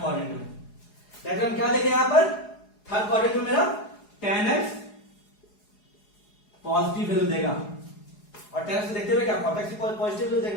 क्वाड्रेंट में। दैट मीन क्या देगा यहां पर थर्ड क्वाड्रेंट में मेरा tan x पॉजिटिव वैल्यू देगा, और tan x देखते हुए क्या cot x भी पॉजिटिव वैल्यू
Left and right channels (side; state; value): right; late; 4.8 ms